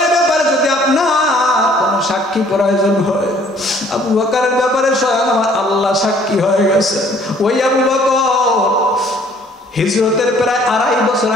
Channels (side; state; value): both; normal; correlation 0.58